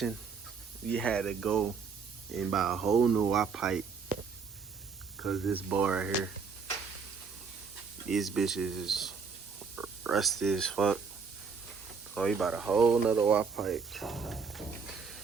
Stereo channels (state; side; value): quieter; left; 5.4 dB